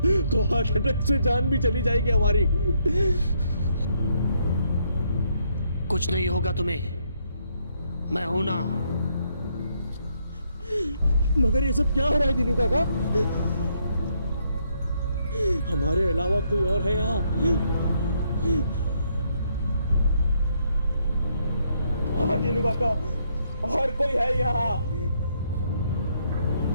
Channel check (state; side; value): inverted; both; correlation -0.73